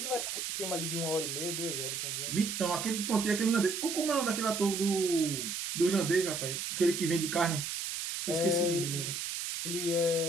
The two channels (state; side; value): noise; right; hiss, 4 dB below the sound